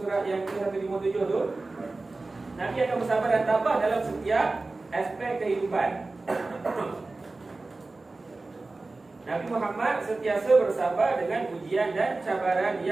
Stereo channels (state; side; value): quieter; left; 3.4 dB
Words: surat yang ke-157 tu. Nabi akan bersabar dan tabah dalam setiap aspek kehidupan. Nabi Muhammad sentiasa bersabar dengan ujian dan cabaran